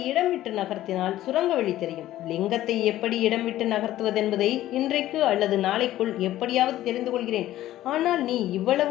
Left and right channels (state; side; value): quieter; right; 14.1 dB